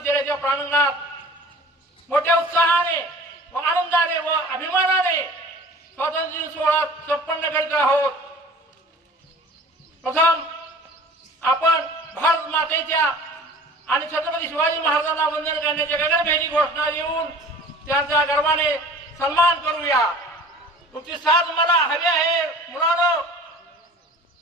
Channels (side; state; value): both; normal; correlation 0.44